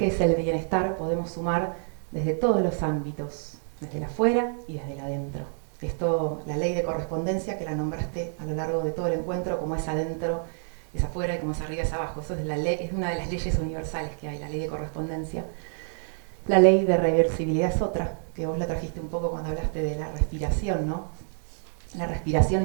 es el bienestar, podemos sumar desde todos los ámbitos, desde el afuera y desde el adentro. Esto, la ley de correspondencia que la nombraste a lo largo de todo el encuentro, como es adentro, es afuera y como es arriba es abajo. Eso es, es una de las leyes universales que hay, la ley de correspondencia. La ley de reversibilidad es otra, que vos la trajiste un poco cuando hablaste de la respiración, ¿no? La respiración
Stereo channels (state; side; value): silent; left; 60 dB below the other